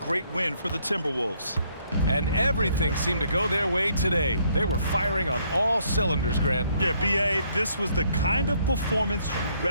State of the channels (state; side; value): inverted; both; correlation -0.68